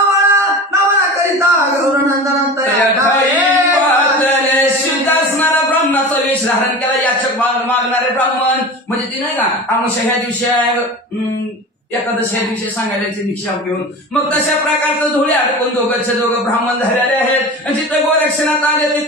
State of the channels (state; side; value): normal; both; correlation 0.32